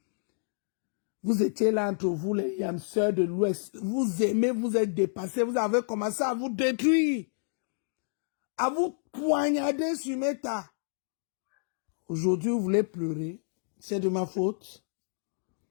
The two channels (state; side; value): silent; right; digital silence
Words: Vous étiez là entre vous, les yamseurs de l'Ouest. Vous aimez, vous êtes dépassés, vous avez commencé à vous détruire. À vous poignarder sur Meta. Aujourd'hui, vous voulez pleurer. C'est de ma faute.